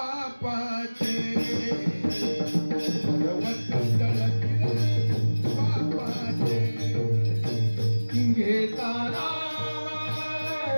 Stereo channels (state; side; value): inverted; both; correlation -1.00